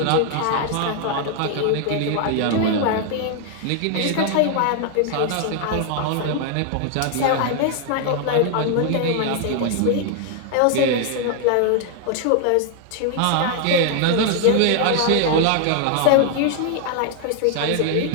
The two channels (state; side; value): different; both; correlation 0.00